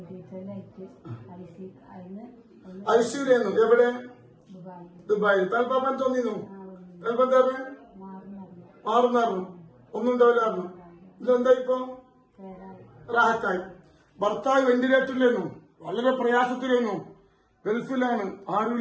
ഐശ്വര്യെന്നു. എവിടെ? ദുബായിൽ. തൽപ്പാപ്പൻ തോന്നിന്നു. തൽപ്പം എന്താ മാറുന്നായിരുന്നു, ഒന്നും ഉണ്ടാവില്ലായിരുന്നു. ഇതെന്താ ഇപ്പൊ? റാഹത്തായി. ഭർത്താവ് വെന്റിലേറ്ററിലായിരുന്നു, വളരെ പ്രയാസത്തിലായിരുന്നു, ഗൾഫിലാണ്,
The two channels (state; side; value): identical; both; correlation 1.00